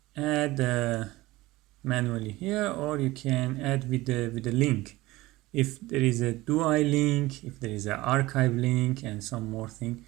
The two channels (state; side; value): quieter; left; 19.2 dB